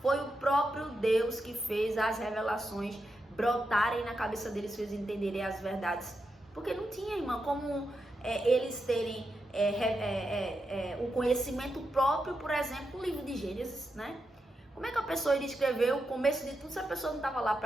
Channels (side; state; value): both; normal; correlation 0.86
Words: foi o próprio Deus que fez as revelações brotarem na cabeça deles, fez entenderem as verdades. Porque não tinha, irmã, como eles terem o conhecimento próprio, por exemplo, o livro de Gênesis, né? Como é que a pessoa iria escrever o começo de tudo se a pessoa não estava lá